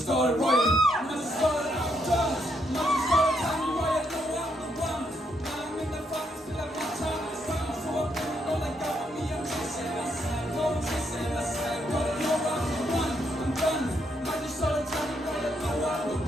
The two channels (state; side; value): normal; both; correlation 0.76